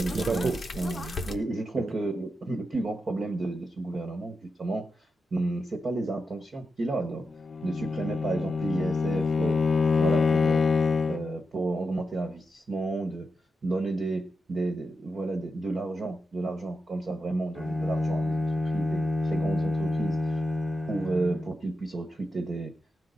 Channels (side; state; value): both; normal; correlation 0.88